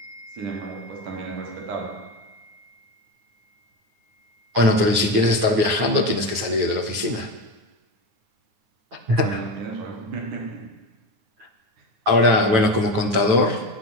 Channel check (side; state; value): left; late; 9.7 ms